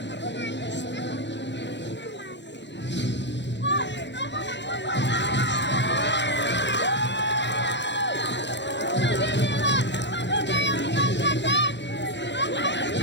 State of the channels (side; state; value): right; late; 0.52 ms